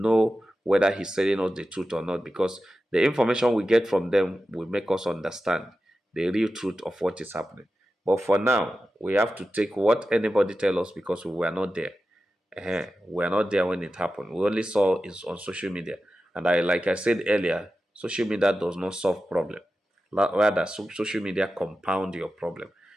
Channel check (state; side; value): normal; both; correlation 0.93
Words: know whether he's telling us the truth or not, because the information we get from them will make us understand the real truth of what is happening. But for now, we have to take what anybody tell us because we were not there. We are not there when it happened. We only saw it on social media. And like I said earlier, social media does not solve problem. Rather, social media compound your problem.